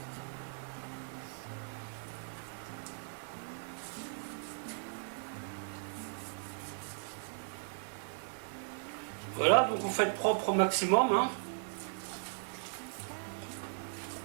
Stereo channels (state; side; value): silent; left; digital silence